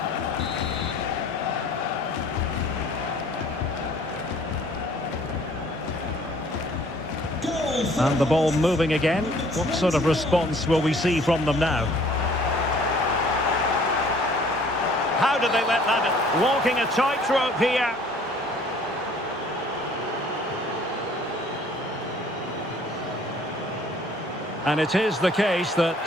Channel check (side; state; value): both; normal; correlation 0.56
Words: And the ball moving again. What sort of response will we see from them now? How did they let that? Walking a tightrope here. And it is the case that